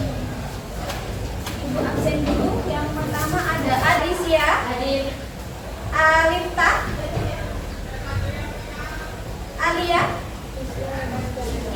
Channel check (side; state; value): both; identical; correlation 1.00